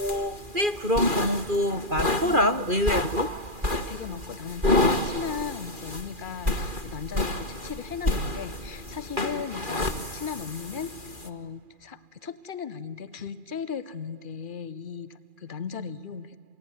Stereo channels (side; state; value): left; late; 2.4 ms